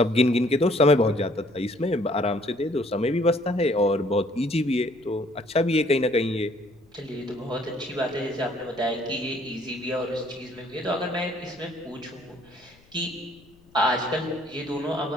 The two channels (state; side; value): noise; left; rumble, 30 dB below the sound